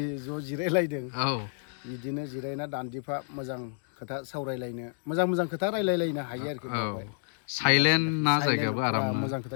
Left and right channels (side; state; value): right; silent; digital silence